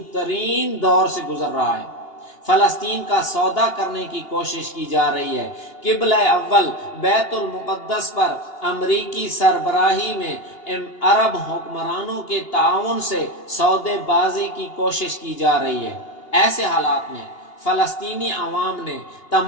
ترین دور سے گزر رہا ہے۔ فلسطین کا سودا کرنے کی کوشش کی جا رہی ہے۔ قبلہ اول بیت المقدس پر امریکی سربراہی میں عرب حکمرانوں کے تعاون سے سودے بازی کی کوشش کی جا رہی ہے۔ ایسے حالات میں فلسطینی عوام نے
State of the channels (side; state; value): right; late; 2.8 ms